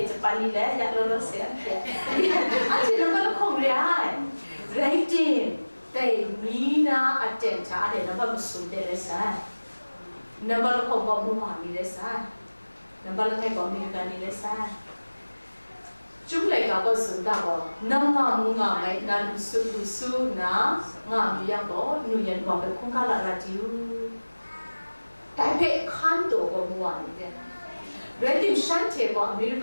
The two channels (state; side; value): inverted; both; correlation -1.00